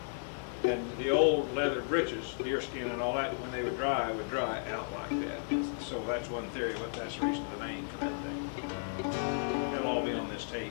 And the old leather breeches, deerskin and all that, when they would dry out like that. So that's one theory, but that's the reason the name for that thing. It'll all be on this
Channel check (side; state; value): right; silent; digital silence